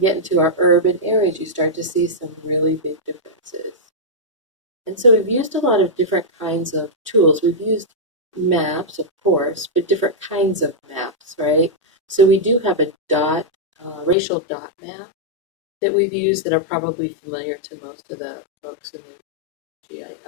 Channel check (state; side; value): drops out; right; at 14.2 s